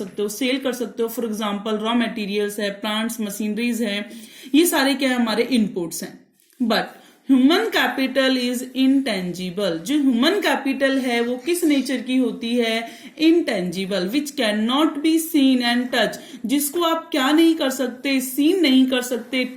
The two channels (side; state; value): both; identical; correlation 1.00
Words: हो, सेल कर सकते हो। फॉर एग्जाम्पल रॉ मटेरियल्स है, प्लांट्स, मशीनरीज है, ये सारे क्या है, हमारे इनपुट्स हैं। But human capital is intangible. जो ह्यूमन कैपिटल है वो किस नेचर की होती है, intangible, which can not be seen and touch, जिसको आप क्या नहीं कर सकते, सीन नहीं कर सकते,